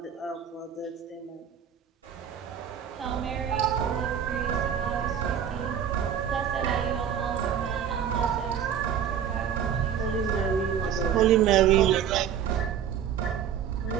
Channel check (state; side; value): quieter; left; 8.7 dB